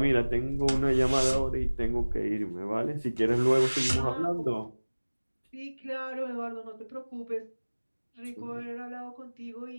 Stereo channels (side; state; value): both; inverted; correlation -1.00